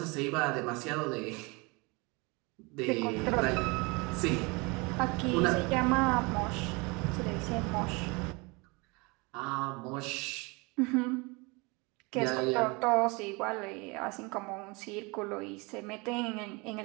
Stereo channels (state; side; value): quieter; left; 27.2 dB